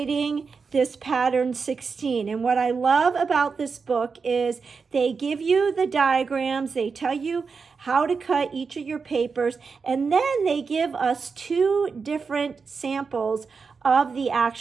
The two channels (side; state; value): left; quieter; 5.1 dB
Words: this pattern 16. And what I love about this book is they give you the diagrams, they tell you how to cut each of your papers, and then they give us 2 different samples of the